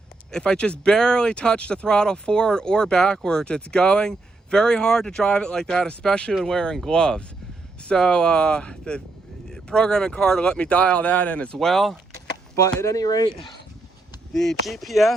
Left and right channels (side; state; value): left; quieter; 3.3 dB